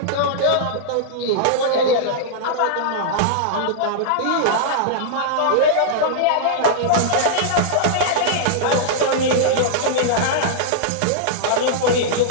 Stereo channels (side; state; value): both; different; correlation -0.02